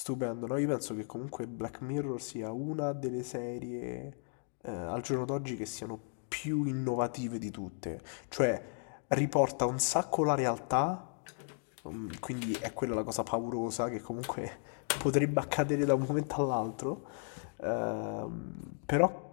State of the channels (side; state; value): right; silent; 55 dB below the other